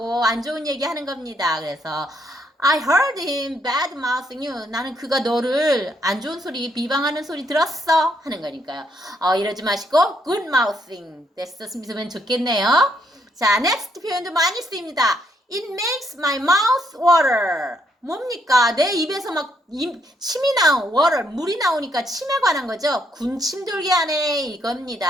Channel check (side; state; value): both; normal; correlation 0.73